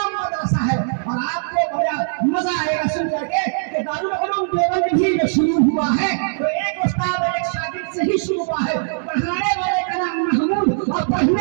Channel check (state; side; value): silent; left; digital silence